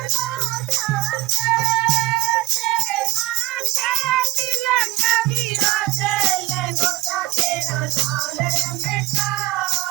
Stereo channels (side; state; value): left; quieter; 19.7 dB